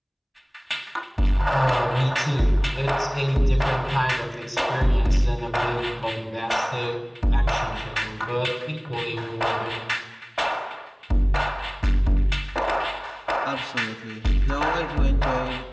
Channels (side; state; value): both; identical; correlation 1.00